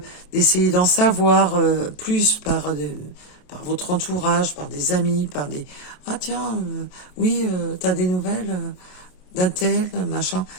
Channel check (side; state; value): right; late; 27 ms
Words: d'en savoir plus par votre entourage, par des amis, par des tiens, oui, t'as des nouvelles d'un tel, machin,